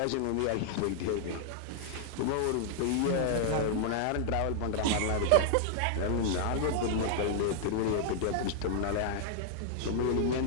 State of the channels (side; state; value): both; different; correlation -0.01